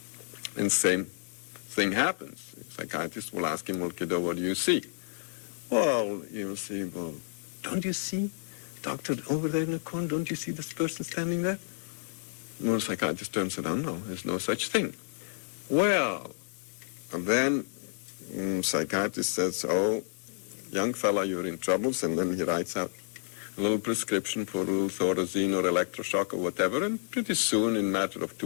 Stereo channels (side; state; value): right; silent; digital silence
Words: and same thing happens. The psychiatrist will ask him, "Well, kiddo, what do you see?" "Well, you'll see, don't you see, doctor, over there in the corner, don't you see this person standing there?" Well, the psychiatrist turns around, "No, there's no such thing." Well, and then psychiatrist says, "Oh, young fella, you're in troubles," and then he writes out a little prescription for a little Thorazine or electroshock or whatever, and pretty soon, in a matter of